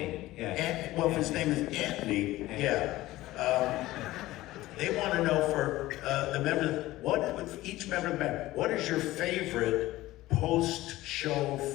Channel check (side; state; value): right; quieter; 17.1 dB